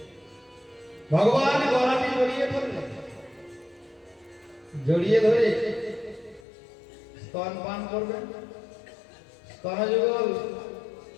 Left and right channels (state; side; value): drops out; right; at 6.4 s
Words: ভগবান গলাটি জড়িয়ে ধরলেন, জড়িয়ে ধরে স্তন পান করবেন। স্তনযুগল